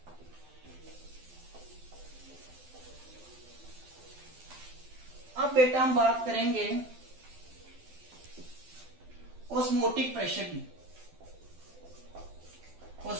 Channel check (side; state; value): left; late; 12 ms